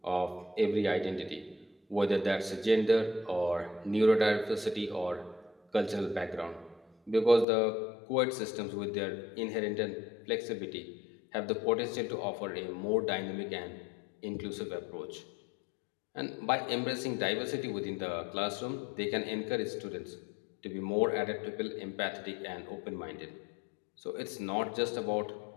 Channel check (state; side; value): drops out; right; at 7.5 s